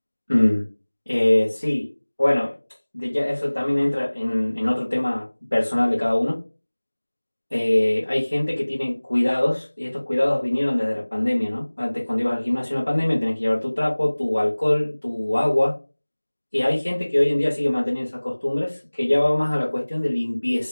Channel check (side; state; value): both; inverted; correlation -1.00